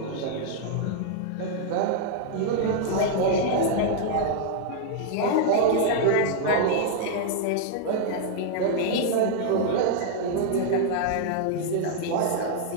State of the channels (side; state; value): both; different; correlation -0.01